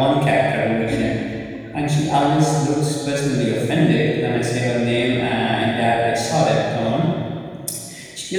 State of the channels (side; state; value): both; identical; correlation 1.00